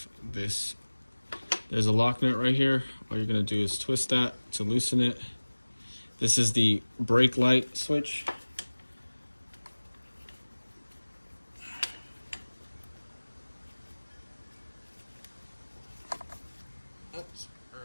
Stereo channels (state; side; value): inverted; both; correlation -1.00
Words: this. There's a lock nut right here. All you're gonna do is twist that to loosen it. This is the brake light switch. Oops, sorry